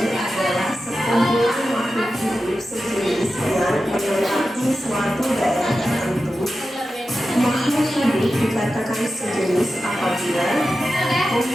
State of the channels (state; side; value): normal; both; correlation 0.92